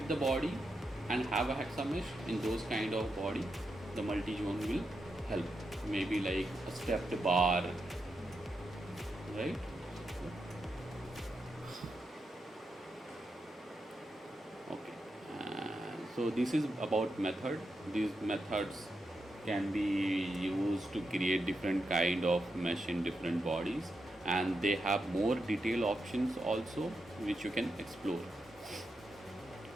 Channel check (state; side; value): normal; both; correlation 0.86